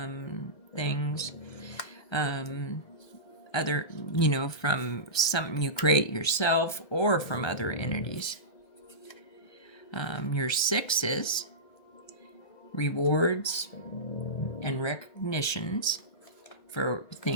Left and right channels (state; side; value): late; right; 1.3 ms